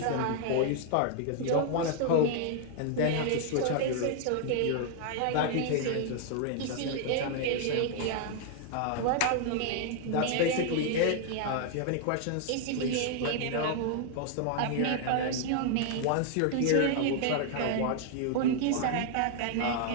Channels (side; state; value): both; different; correlation 0.00